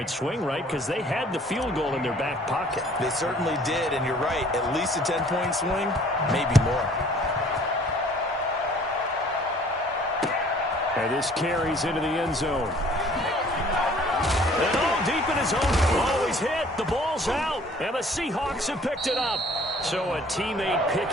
swing, right? Because they had the field goal in their back pocket. They certainly did, and you're right. At least a 10-point swing, maybe more. And this carries into the end zone. And all deep in his own. Oh, he's hit. The ball's out. And the Seahawks have picked it up. So a teammate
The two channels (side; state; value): both; normal; correlation 0.54